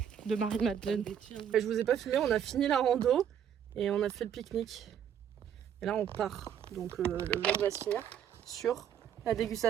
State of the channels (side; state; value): left; quieter; 9.0 dB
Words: De Marie-Madeleine. Je vous ai pas filmé, on a fini la rando et on a fait le pique-nique. Et là on part. Donc le vlog va se finir sur la